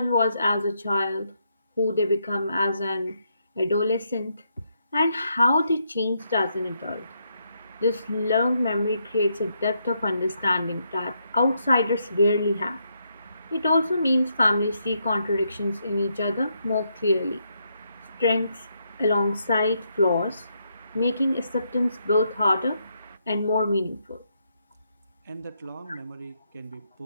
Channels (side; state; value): both; inverted; correlation -0.78